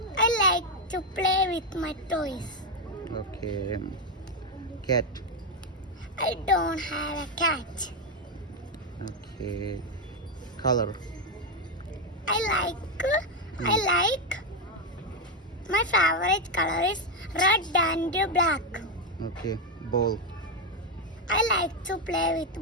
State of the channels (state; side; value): normal; both; correlation 0.06